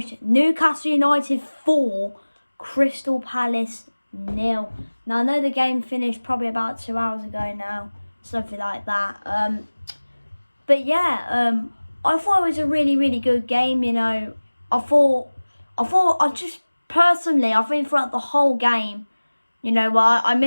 Newcastle United 4, Crystal Palace 0. Now, I know the game finished probably about 2 hours ago now, something like that. But yeah, I thought it was a really, really good game. You know, I think throughout the whole game, you know, well, I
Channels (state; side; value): inverted; both; correlation -1.00